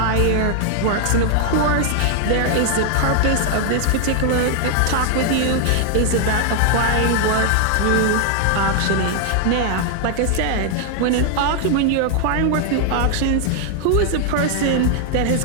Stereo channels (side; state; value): both; different; correlation 0.00